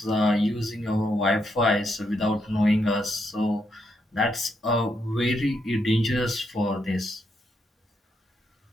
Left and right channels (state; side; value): normal; both; correlation 0.79